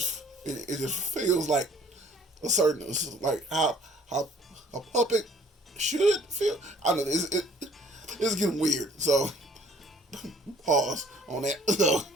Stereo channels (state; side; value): normal; both; correlation 0.56